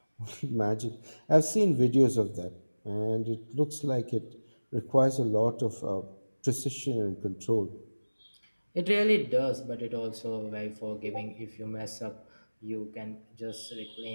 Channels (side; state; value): both; inverted; correlation -1.00